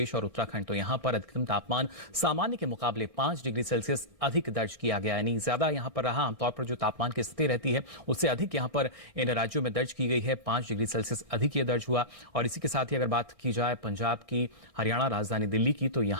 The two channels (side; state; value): right; late; 4.4 ms